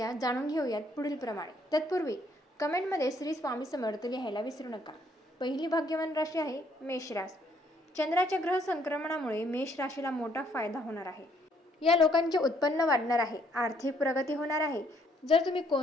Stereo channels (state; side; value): normal; both; correlation 0.67